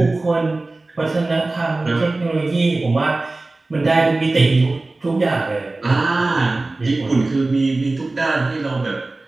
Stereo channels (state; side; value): quieter; left; 3.1 dB